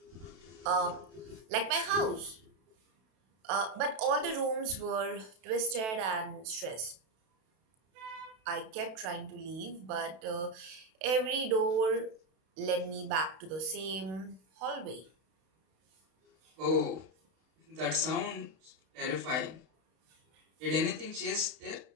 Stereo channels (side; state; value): left; late; 32 ms